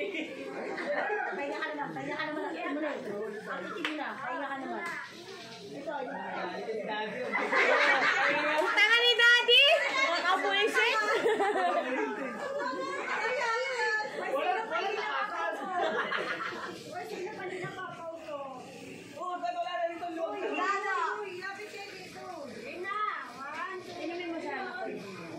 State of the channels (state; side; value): identical; both; correlation 1.00